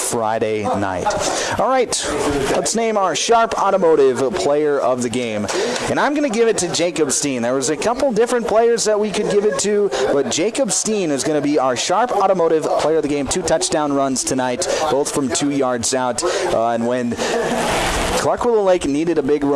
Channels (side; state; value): both; identical; correlation 1.00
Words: night. All right, let's name our Sharp Automotive player of the game, and I'm going to give it to Jacob Steen. There was a couple different players that we could give it to, but Jacob Steen is going to be our Sharp Automotive player of the game. 2 touchdown runs tonight, both from 2 yards out. And when Clark Willow Lake needed a big